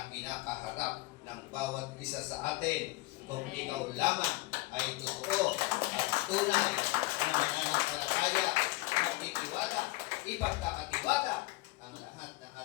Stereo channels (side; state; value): right; quieter; 21.7 dB